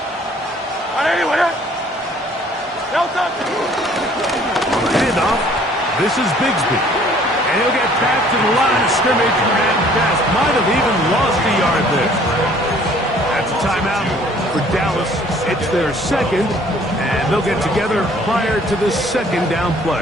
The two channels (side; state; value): both; normal; correlation 0.57